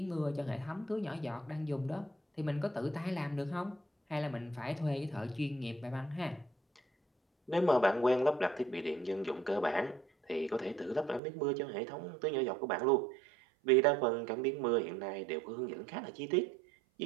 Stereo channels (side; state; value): left; drops out; at 11.2 s